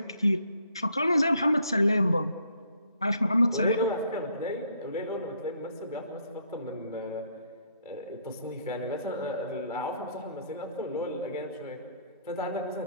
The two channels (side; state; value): both; inverted; correlation -0.67